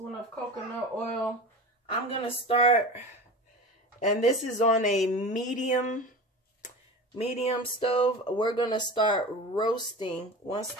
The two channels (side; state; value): both; normal; correlation 0.32